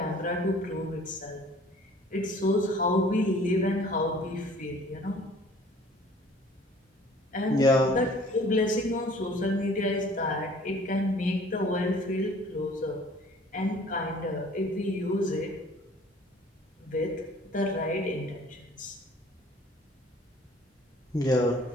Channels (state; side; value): normal; both; correlation 0.52